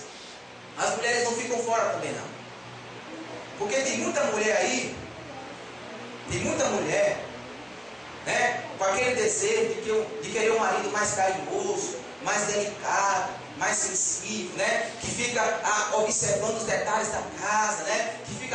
as mulheres não ficam fora também não. Porque tem muita mulher aí, né, com aquele desejo de querer um marido mais carinhoso, mais delicado, mais sensível, né, que fica observando os detalhes da casa, né, que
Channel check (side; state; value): both; identical; correlation 1.00